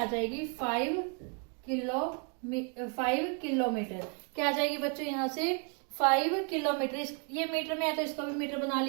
जाएगी? 5 किलोमीटर। क्या आ जाएगी बच्चों यहाँ से? 5 किलोमीटर। ये मीटर में है तो इसको भी मीटर बना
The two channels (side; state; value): left; quieter; 37.8 dB